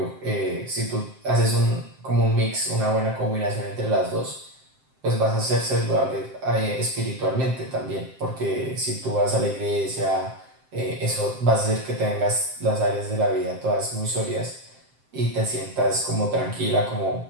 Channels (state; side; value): late; left; 7.7 ms